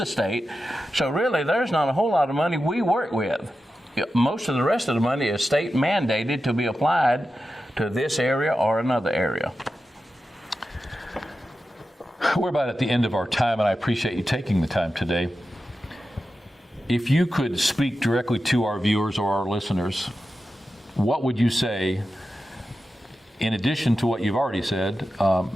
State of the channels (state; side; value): normal; both; correlation 0.91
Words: state. So really, there's not a whole lot of money we work with. Most of the rest of the money is state mandated to be applied to this area or another area. We're about at the end of our time, and I appreciate you taking the time today. If you could speak directly to our viewers or our listeners, what would you say, in addition to what you've already said,